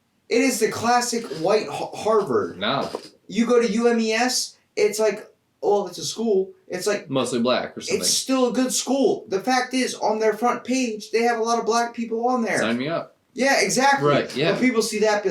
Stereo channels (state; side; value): identical; both; correlation 1.00